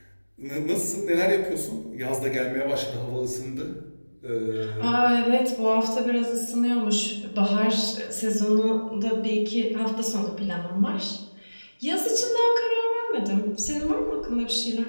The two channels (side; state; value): both; inverted; correlation -1.00